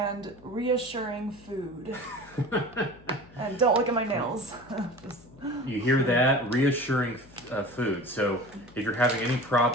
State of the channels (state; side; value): noise; left; hum, 24 dB below the sound